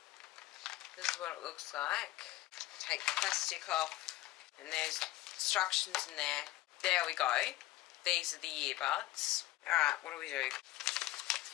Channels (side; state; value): right; quieter; 16.7 dB